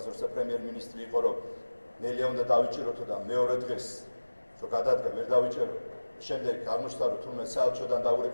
როცა პრემიერ-მინისტრი იყო რომ მელია უნდა დავიჭიროთო და მეორე დღეს რომ გადადგა ვერ დავიჭერო შემდეგ აღმოჩნდა რომ თურმე საელჩოდან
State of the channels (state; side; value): inverted; both; correlation -1.00